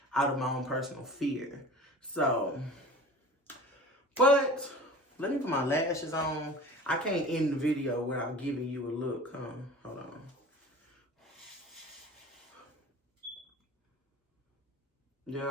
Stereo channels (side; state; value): both; normal; correlation 0.40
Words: out of my own personal fear. So, but let me put my lashes on. I can't end the video without giving you a look, huh? Hold on. Yeah,